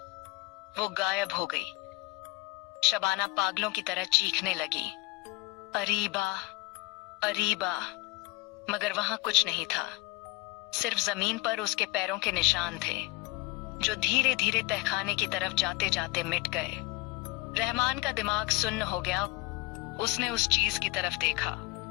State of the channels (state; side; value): quieter; right; 22.7 dB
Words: वो गायब हो गई। शबाना पागलों की तरह चीखने लगी, अरीबा, अरीबा, मगर वहां कुछ नहीं था। सिर्फ जमीन पर उसके पैरों के निशान थे, जो धीरे धीरे तहखाने की तरफ जाते जाते मिट गए। रहमान का दिमाग सुन्न हो गया। उसने उस चीज की तरफ देखा।